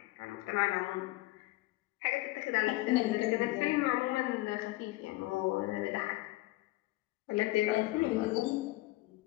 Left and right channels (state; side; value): quieter; right; 19.5 dB